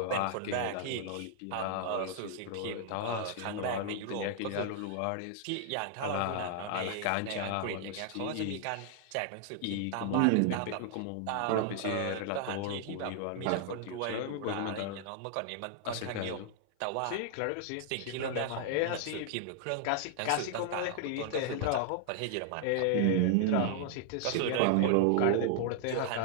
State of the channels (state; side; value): different; both; correlation -0.01